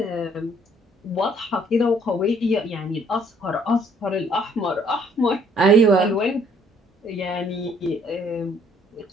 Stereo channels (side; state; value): both; normal; correlation 0.63